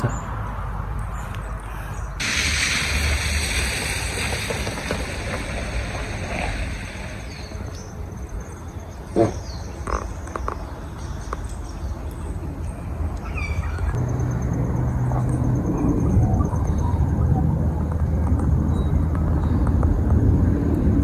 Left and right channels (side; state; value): both; identical; correlation 1.00